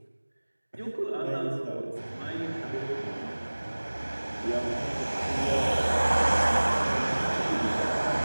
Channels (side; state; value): both; inverted; correlation -1.00